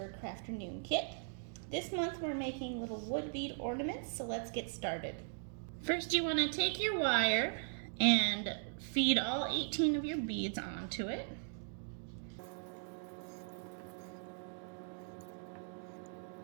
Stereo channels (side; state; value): left; silent; digital silence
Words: Crafternoon kit. This month we're making little wood bead ornaments, so let's get started. First you want to take your wire and feed all 18 of your beads onto it.